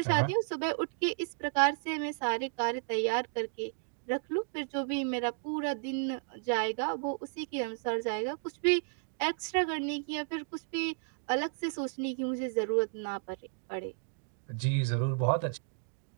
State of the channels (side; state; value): left; silent; digital silence